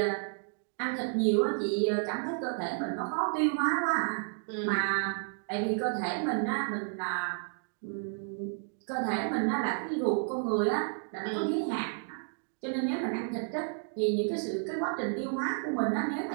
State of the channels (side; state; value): left; silent; 57 dB below the other